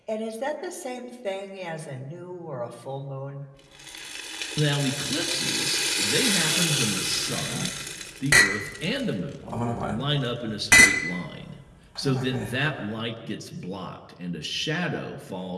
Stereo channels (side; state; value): both; identical; correlation 1.00